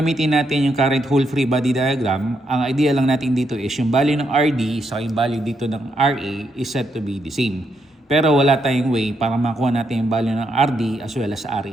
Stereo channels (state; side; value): normal; both; correlation 0.79